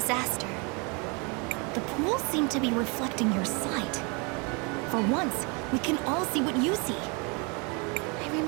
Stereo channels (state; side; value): quieter; left; 31.5 dB